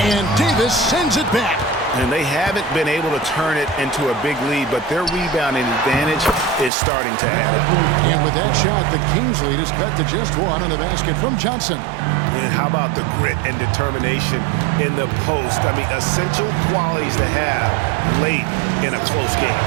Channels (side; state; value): left; drops out; at 6.7 s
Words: And Davis sends it back. And they haven't been able to turn it into a big lead, but their rebounding advantage is starting to add up. And with that shot, the Kings lead is cut to just one on the basket from Johnson. And how about the grit and determination in the post? I mean, essential qualities to have late in a close game.